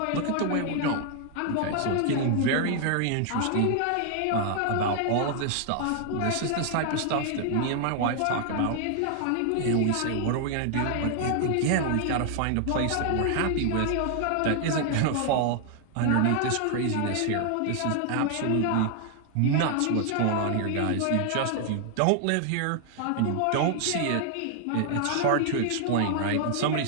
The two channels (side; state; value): both; different; correlation 0.00